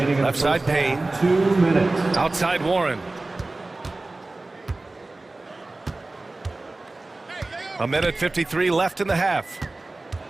Left side Payne. 2 minutes. Outside Warren. A minute 53 left in the half.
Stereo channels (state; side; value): quieter; left; 3.0 dB